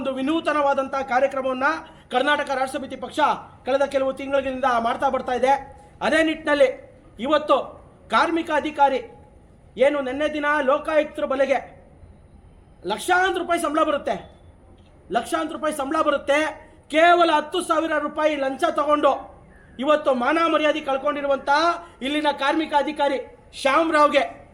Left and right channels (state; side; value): identical; both; correlation 1.00